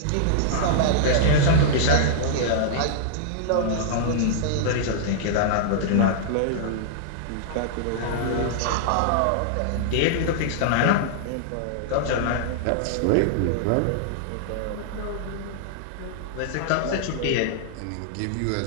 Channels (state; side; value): different; both; correlation -0.01